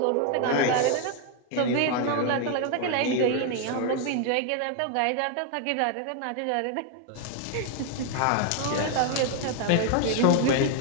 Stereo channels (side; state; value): both; different; correlation 0.00